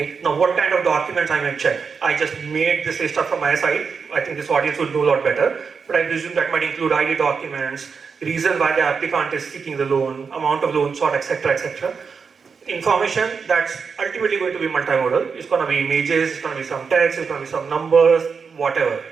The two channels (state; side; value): quieter; left; 5.6 dB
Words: Now what kind of documents I may check? I just made this stuff from my side. I think this audience would know a lot better. But I presume that might include ID documents, reason why the applicant is seeking the loan, amount of loan sought, etc., etc. Information that's ultimately going to be multimodal. It's going to be images, it's going to be some text, it's going to be some numbers, whatever.